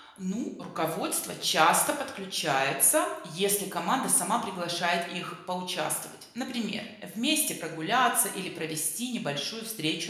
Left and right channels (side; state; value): both; identical; correlation 1.00